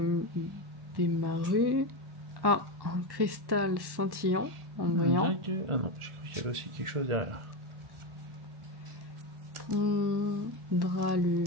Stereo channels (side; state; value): left; late; 1.1 ms